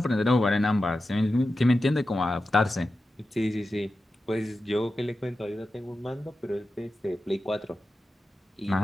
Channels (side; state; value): both; normal; correlation 0.92